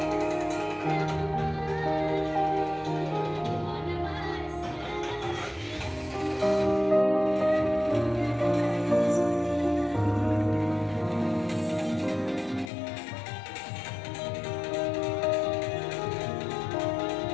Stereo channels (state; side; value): drops out; right; at 12.7 s